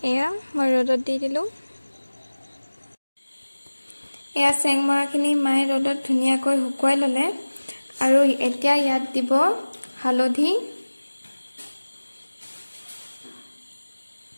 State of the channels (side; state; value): both; inverted; correlation -1.00